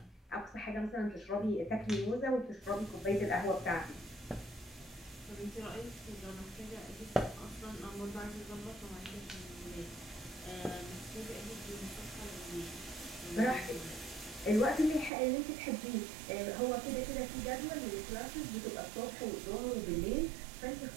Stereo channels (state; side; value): drops out; left; at 15.1 s